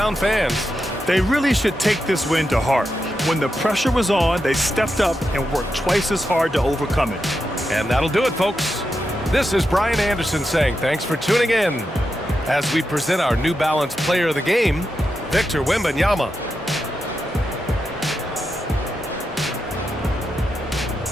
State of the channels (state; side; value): normal; both; correlation 0.87